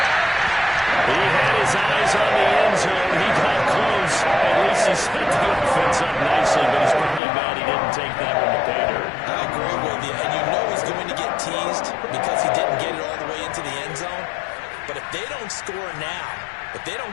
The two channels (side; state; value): right; drops out; at 7.2 s